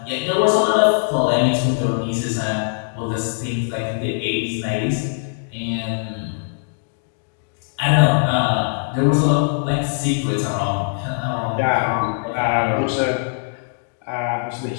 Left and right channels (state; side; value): silent; right; digital silence